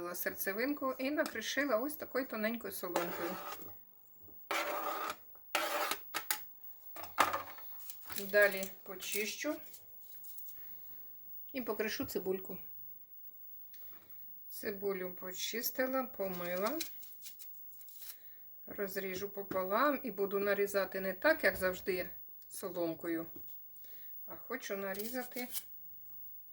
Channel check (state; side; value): identical; both; correlation 1.00